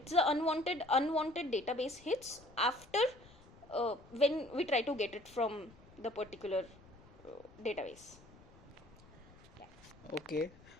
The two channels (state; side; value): noise; left; rumble, 23 dB below the sound